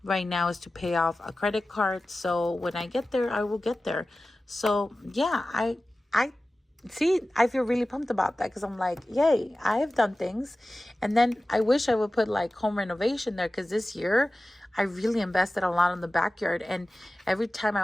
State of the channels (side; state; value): both; normal; correlation 0.96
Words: right now is to pay off a credit card. So when I get there, I will get there. So yeah, I see, I feel really pumped about that because I'm like, yay, I have done things. And then I wish I would put like home renovation there, because this year I really invested a lot in the backyard. And every time I